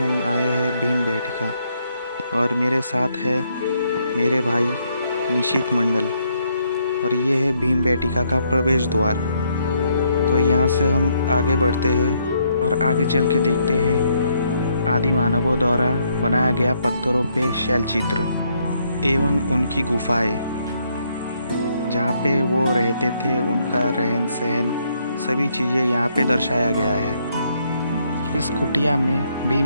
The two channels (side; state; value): both; inverted; correlation -0.72